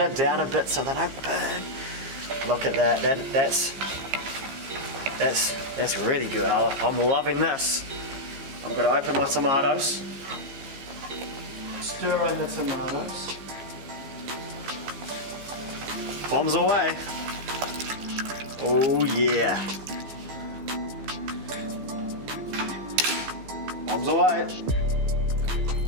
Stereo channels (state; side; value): late; left; 15 ms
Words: down a bit so they don't burn. Look at that, that's really good. I'm loving this. I'm going to open my tomatoes, stir in the tomatoes, bombs away. Oh yeah, bombs away.